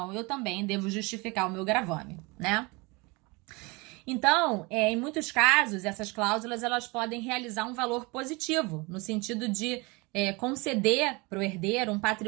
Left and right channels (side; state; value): left; quieter; 26.3 dB